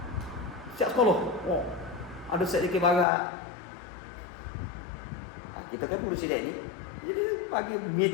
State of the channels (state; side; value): drops out; right; at 3.1 s